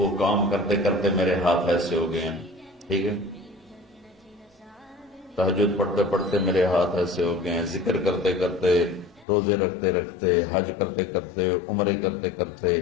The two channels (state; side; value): drops out; right; at 9.2 s